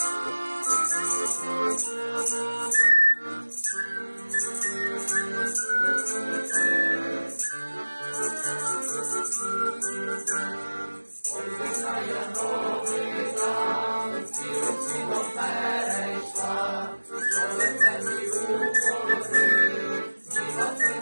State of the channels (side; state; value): both; inverted; correlation -1.00